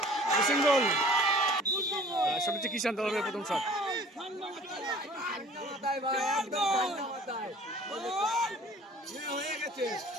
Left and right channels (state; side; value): normal; both; correlation 0.49